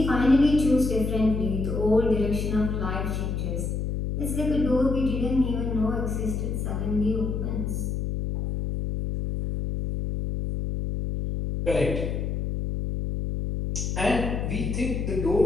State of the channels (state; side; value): noise; left; hum, 2 dB below the sound